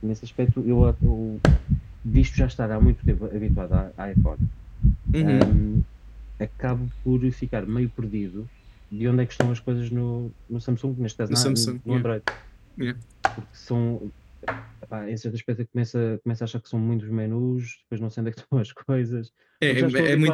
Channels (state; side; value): identical; both; correlation 1.00